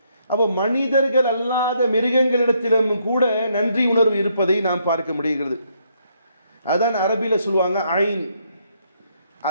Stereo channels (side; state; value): both; inverted; correlation -0.73